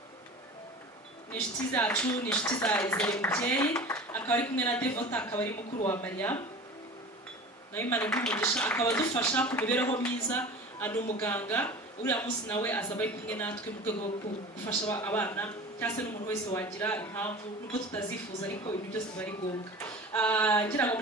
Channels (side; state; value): both; normal; correlation 0.37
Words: Ni inshuti zacu, ni inshuti za Izere Mubyeyi, akaba ari kumwe na Devota, akaba ari mukuru wa Mariam. Nawe Imana y'umugisha akaba dufasha ku mibereho myiza, ari umuganga. Uriya munsi nawe azaba ari kumwe natwe mu rwego rwo gufasha abana cyangwa se n'umuntu wese wagira impamvu nubwo tutazifuza ariko ibintu byose bari ngombwa. Ngira ngo